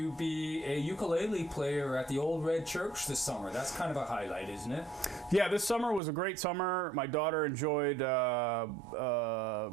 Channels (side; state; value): left; drops out; at 6.0 s